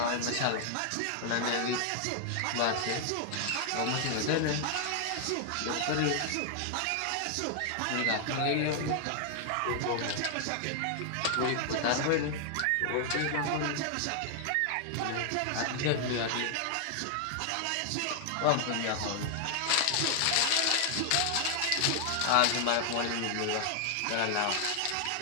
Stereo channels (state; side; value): different; both; correlation 0.00